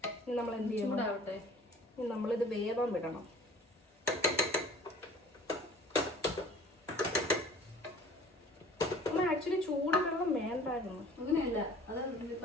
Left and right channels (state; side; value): normal; both; correlation 0.48